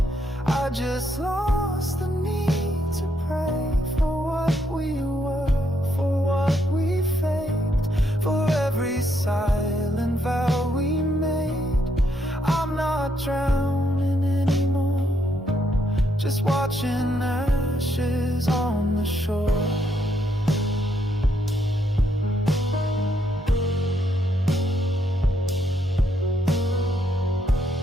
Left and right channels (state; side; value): normal; both; correlation 0.76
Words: I just lost the need to pray for what we were, for what we faked, for every silent vow we made. I'm not drowning anymore, just watching ashes on the shore.